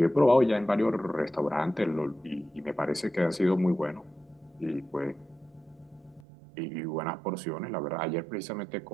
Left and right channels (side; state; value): left; drops out; at 6.2 s